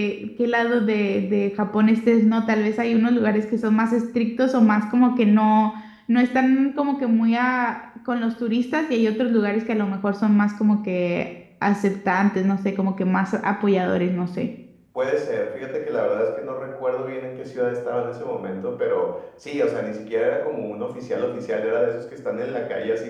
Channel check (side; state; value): both; identical; correlation 1.00